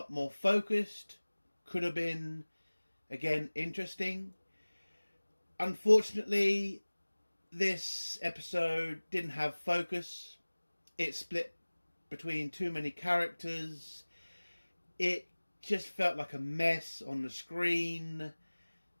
more focused, could have been, again, interesting. Unfortunately, this episode didn't have focus. It split between too many characters. It just felt like a mess on the screen.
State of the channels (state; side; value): inverted; both; correlation -1.00